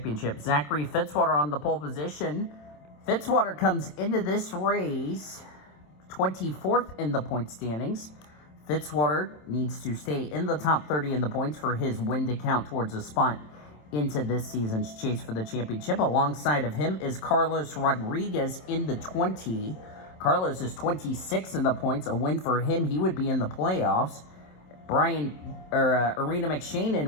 Zachary Fitzwater on the pole position. Fitzwater comes into this race 24th in the point standings. Fitzwater needs to stay in the top 30 in the points for his win to count towards a spot into this season's chase for the championship. Alongside of him is Carlos Rodriguez in the 20. Carlos is 26 in the points. A win for him, he would be in the playoffs. Arena McShane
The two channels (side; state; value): right; late; 27 ms